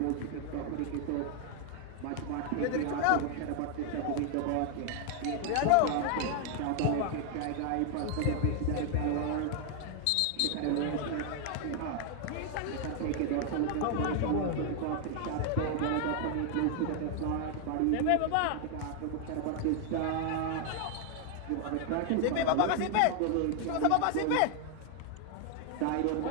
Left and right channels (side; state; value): both; different; correlation 0.00